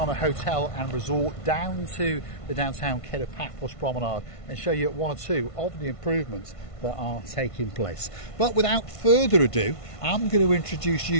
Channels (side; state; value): right; late; 1.5 ms